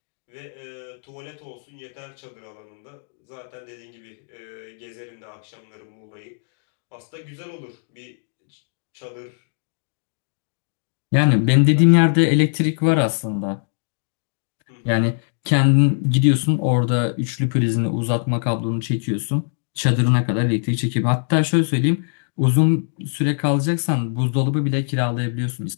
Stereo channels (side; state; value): right; silent; digital silence